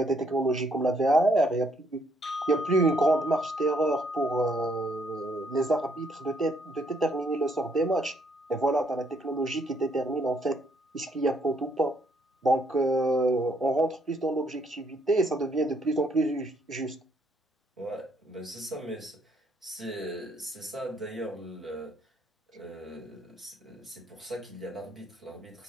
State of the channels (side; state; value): both; normal; correlation 0.70